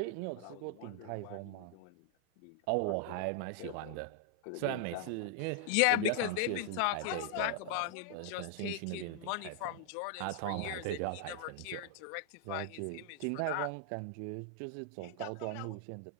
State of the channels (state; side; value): different; both; correlation 0.00